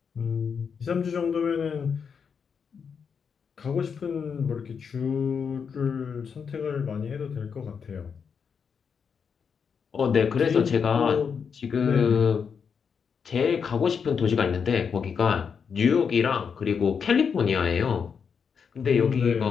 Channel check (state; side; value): quieter; right; 6.4 dB